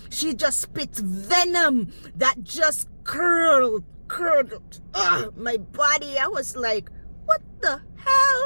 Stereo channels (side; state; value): both; inverted; correlation -1.00